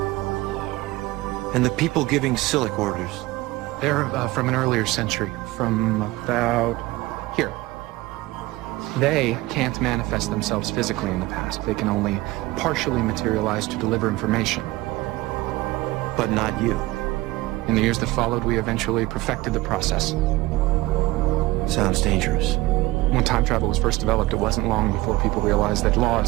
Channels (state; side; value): quieter; left; 19.1 dB